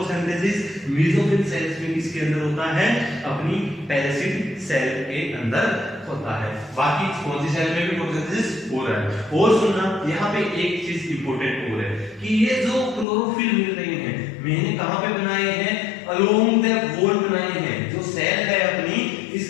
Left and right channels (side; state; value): right; drops out; at 13.1 s